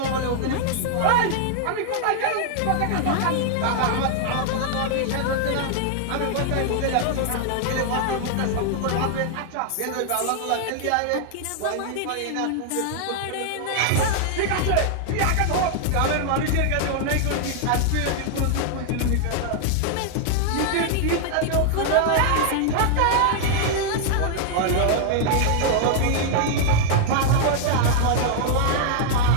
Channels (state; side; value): different; both; correlation 0.00